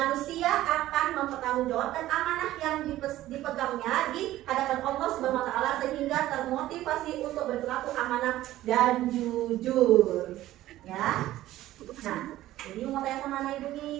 akan mempertanggungjawabkan amanah yang dipegangnya di hadapan Allah Subhanahu wa taala sehingga termotivasi untuk berperilaku amanah dan jujur. Ya. Nah, jadi mau tanya sama anak Ibu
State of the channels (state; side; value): quieter; left; 14.8 dB